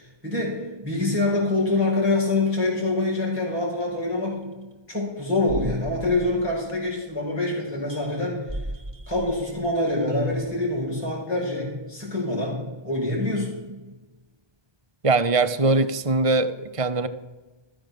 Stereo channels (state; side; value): late; left; 1.5 ms